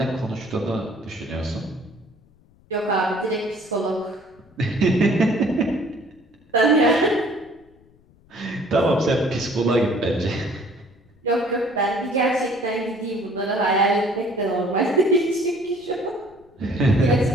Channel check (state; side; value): noise; left; rumble, 30 dB below the sound